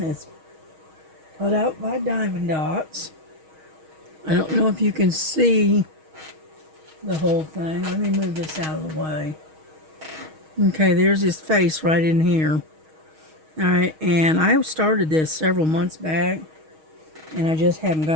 It's put out by Diamond Dots. I don't know if you can see the whole thing. Let me move this out of the way. Okay, there's his face right in here. All right, and I started this several months back, and I just haven't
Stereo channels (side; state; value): left; late; 6.4 ms